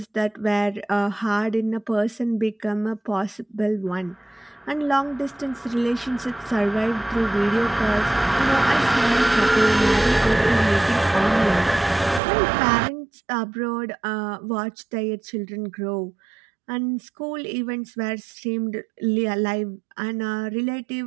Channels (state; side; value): drops out; left; at 12.2 s